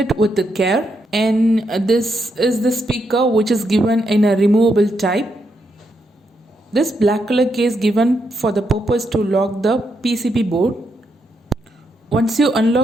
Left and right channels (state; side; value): normal; both; correlation 0.80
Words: with the care. And this is the speaker which is given in a removable type. This black color case given for the purpose to lock the PCB board. Once you